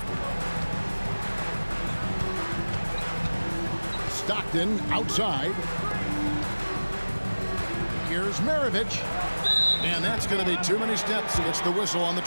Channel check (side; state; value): both; inverted; correlation -1.00